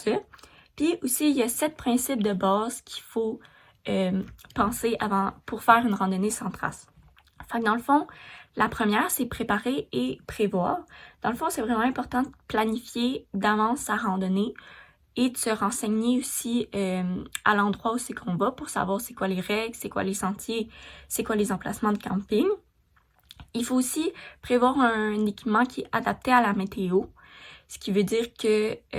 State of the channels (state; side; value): identical; both; correlation 1.00